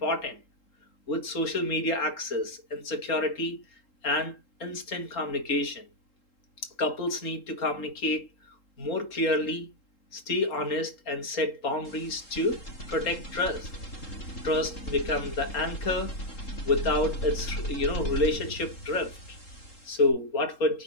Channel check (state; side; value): late; right; 3.7 ms